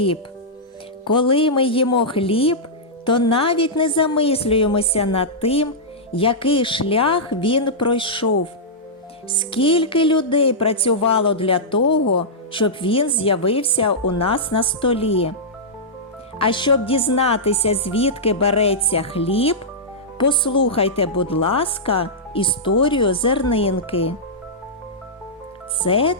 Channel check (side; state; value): both; normal; correlation -0.12